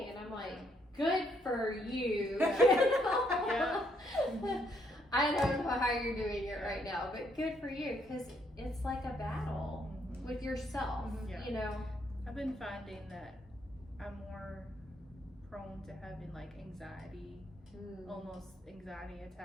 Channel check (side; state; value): both; normal; correlation 0.72